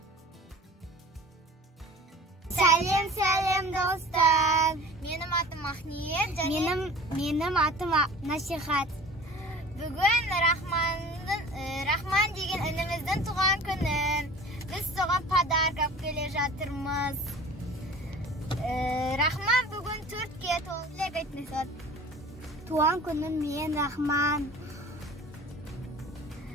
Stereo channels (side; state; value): both; normal; correlation 0.42